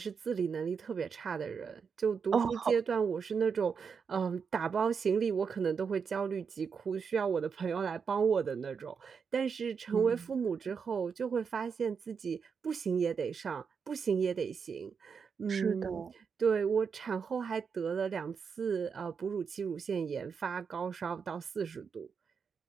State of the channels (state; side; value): quieter; left; 6.1 dB